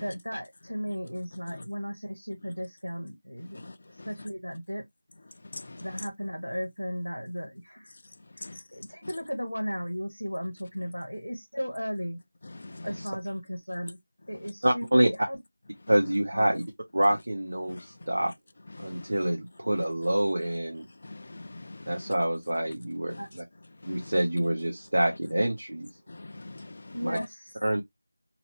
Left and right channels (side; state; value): both; inverted; correlation -0.99